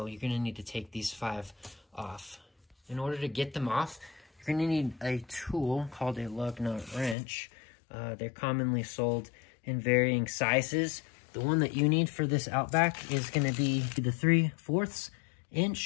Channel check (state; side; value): drops out; right; at 7.2 s